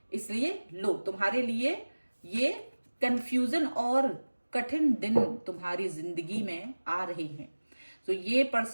इसलिए लो, तुम्हारे लिए ये कंफ्यूजन और कठिन दिन तुम्हारी जिंदगी में आ रहे हैं। तो ये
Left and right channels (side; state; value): both; inverted; correlation -1.00